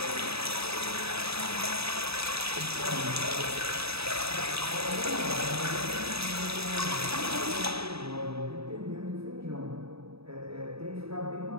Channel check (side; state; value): left; late; 0.78 ms